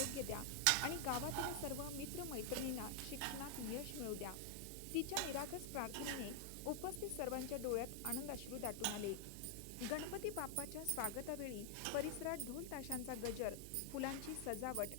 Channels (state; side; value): different; both; correlation 0.00